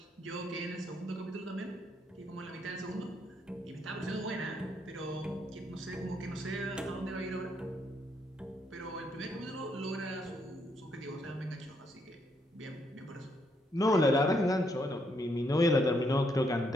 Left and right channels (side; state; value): both; normal; correlation 0.74